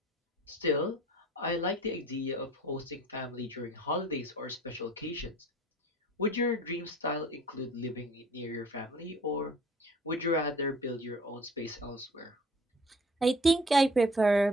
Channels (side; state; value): both; normal; correlation 0.49